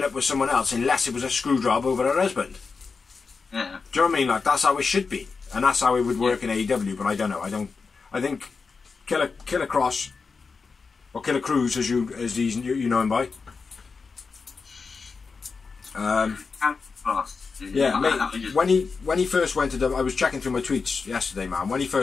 up with someone else unless it was a screw job over her husband. Yeah. Do you know what I mean? Like, that's how it should be, and that's how it would work in AEW. But I don't know. I think Killer Kross or Killer Cruz, as you know him by. Yeah, mate, when he first went to I was checking through my tweets yesterday, man. When he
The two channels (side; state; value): right; quieter; 4.8 dB